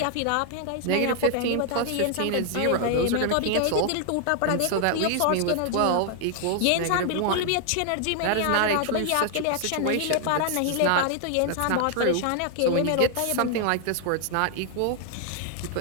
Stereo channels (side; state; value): both; different; correlation 0.00